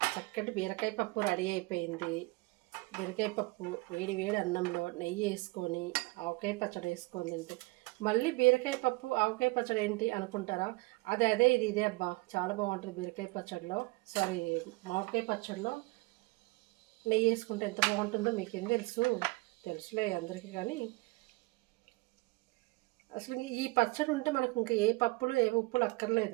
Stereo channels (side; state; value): left; quieter; 25.0 dB